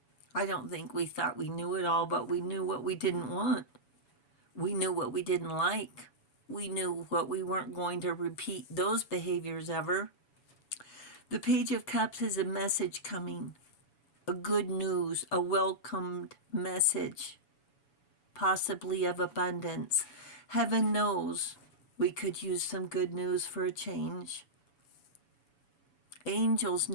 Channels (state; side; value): late; right; 7.1 ms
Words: I don't think we thought we knew it all, but we knew what we didn't want. We knew what we didn't like. We knew what we weren't going to repeat those behaviors ever. The Page of Cups is a message coming, a good news, a welcomed message, possibly of abundance. Heaven knows we could use some good news for a change. Angels